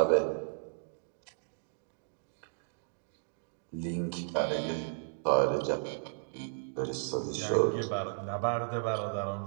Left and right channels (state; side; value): silent; left; digital silence